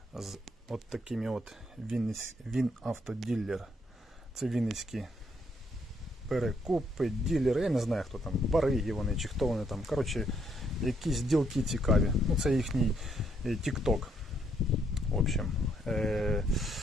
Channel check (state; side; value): normal; both; correlation 0.73